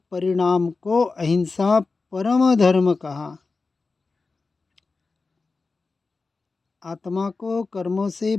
परिणाम को अहिंसा परम धर्म कहा। आत्मा को कर्मों से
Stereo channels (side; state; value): right; quieter; 4.0 dB